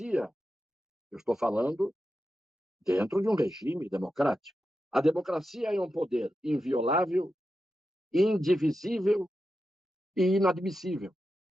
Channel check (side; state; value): both; normal; correlation 0.90